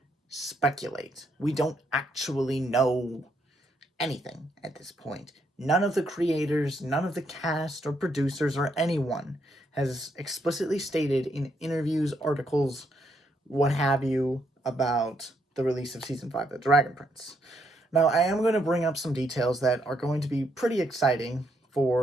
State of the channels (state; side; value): normal; both; correlation 0.76